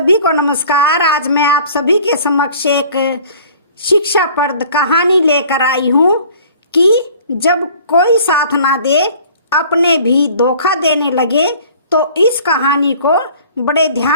को नमस्कार। आज मैं आप सभी के समक्ष एक शिक्षाप्रद कहानी लेकर आई हूँ कि जब कोई साथ ना दे, अपने भी धोखा देने लगे, तो इस कहानी को बड़े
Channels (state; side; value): inverted; both; correlation -0.50